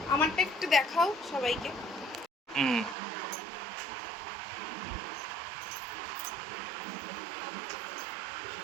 আমারটা একটু দেখাও সবাইকে।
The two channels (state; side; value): drops out; left; at 3.0 s